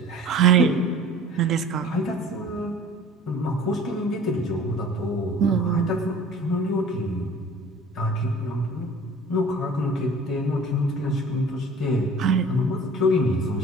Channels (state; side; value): normal; both; correlation 0.45